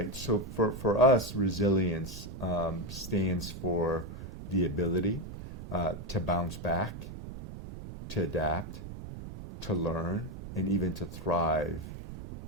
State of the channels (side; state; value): right; noise; rumble, 10 dB below the sound